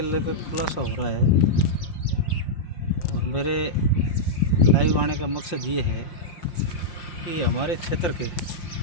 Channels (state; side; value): late; right; 5.6 ms